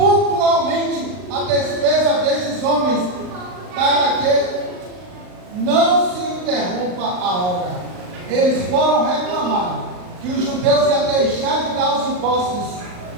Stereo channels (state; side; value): late; left; 39 ms